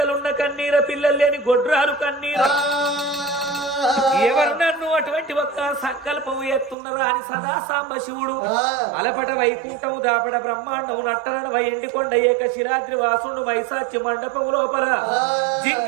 కన్నీర పిల్లలు లేని గొడ్రాలు కన్నీర ఎవరు నన్ను అటువంటి ఒక్క సంకల్పం ఎత్తున్నరా అని సదా సాంబ శివుడు అలపట వైకుంఠము దాపడ బ్రహ్మాండము నట్టన ఎండికొండ ఏక శిరాద్రి వాసుడు వైశాచి మండపము లోపల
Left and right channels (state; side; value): drops out; left; at 6.8 s